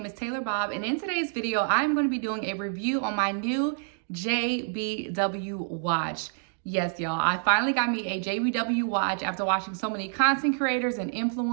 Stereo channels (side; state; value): left; silent; digital silence